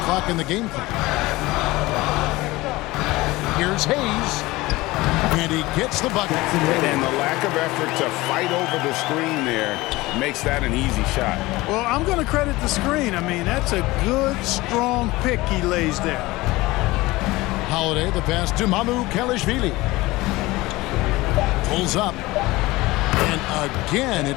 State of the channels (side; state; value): right; quieter; 20.1 dB